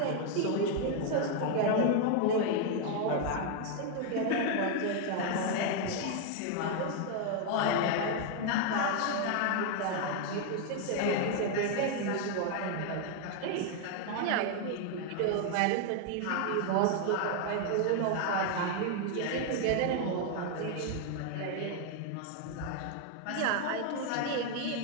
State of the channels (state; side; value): different; both; correlation 0.00